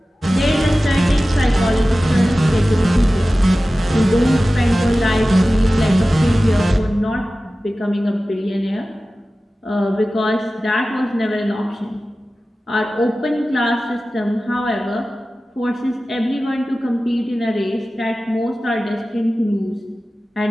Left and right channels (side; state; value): both; normal; correlation 0.95